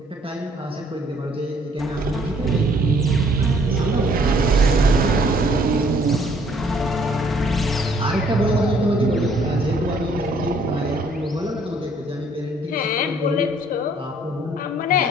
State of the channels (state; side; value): normal; both; correlation 0.62